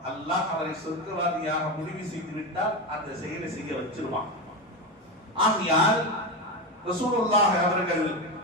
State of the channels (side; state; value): both; normal; correlation 0.16